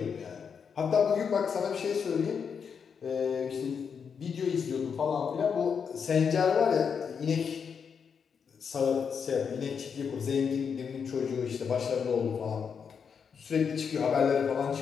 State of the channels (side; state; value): right; quieter; 6.6 dB